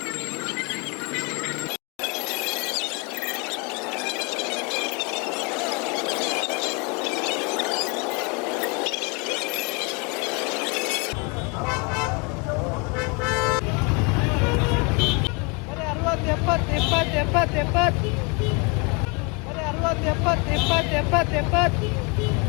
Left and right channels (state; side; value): quieter; right; 31.5 dB